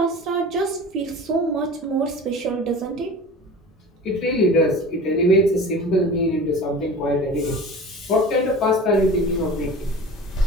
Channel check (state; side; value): normal; both; correlation 0.37